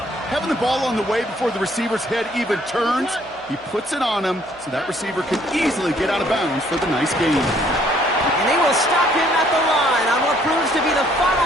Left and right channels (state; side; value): noise; right; hum, 28 dB below the sound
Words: having the ball on the way before the receiver's head even turns. He puts it on him so that receiver can easily get out of bounds for the nice gain. And they will stop him at the line on what proves to be the